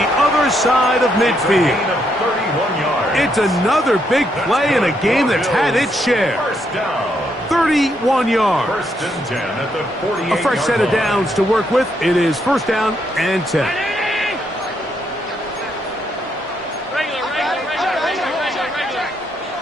other side of midfield. Gain of 31 yards. It's another big play in a game that's had its share. First down. 31 yards. First and 10 at the 48-yard line. A fresh set of downs to work with. It is first down and 10.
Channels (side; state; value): both; normal; correlation 0.76